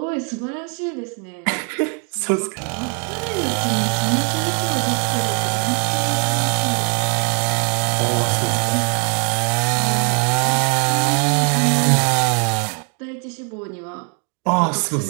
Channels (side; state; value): left; quieter; 39.3 dB